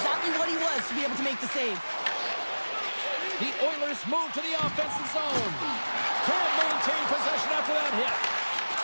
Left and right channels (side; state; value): both; inverted; correlation -1.00